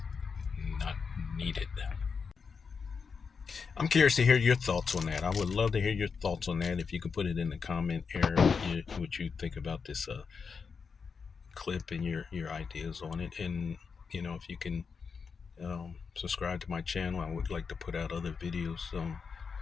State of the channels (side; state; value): right; quieter; 5.5 dB